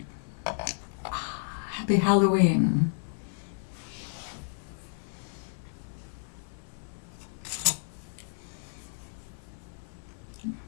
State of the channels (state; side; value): silent; right; 57 dB below the other